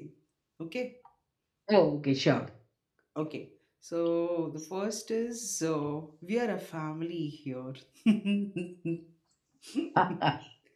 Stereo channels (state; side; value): identical; both; correlation 1.00